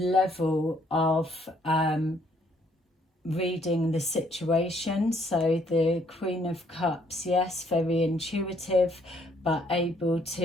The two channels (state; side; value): normal; both; correlation 0.66